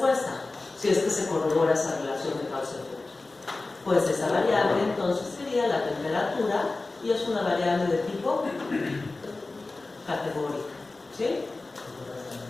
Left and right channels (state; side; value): quieter; right; 3.4 dB